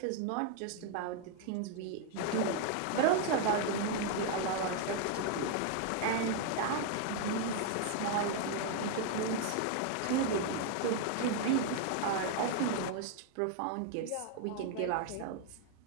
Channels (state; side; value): different; both; correlation 0.00